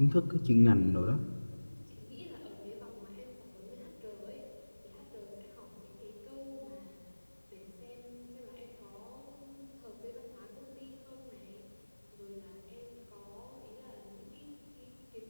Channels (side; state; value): both; inverted; correlation -1.00